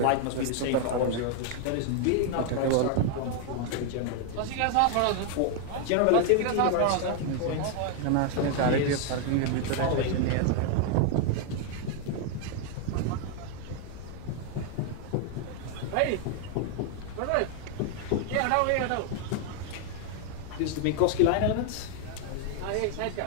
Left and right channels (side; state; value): both; different; correlation 0.00